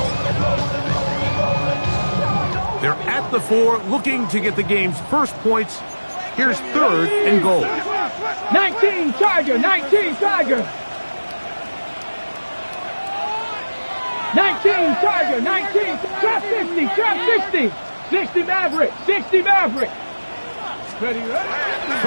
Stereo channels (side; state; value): both; inverted; correlation -1.00